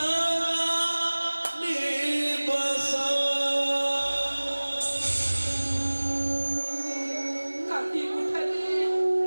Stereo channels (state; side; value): inverted; both; correlation -1.00